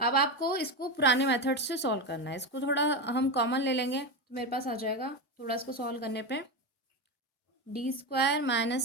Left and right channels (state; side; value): normal; both; correlation 0.16